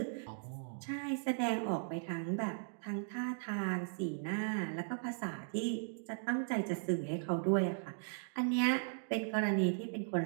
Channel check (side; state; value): left; silent; digital silence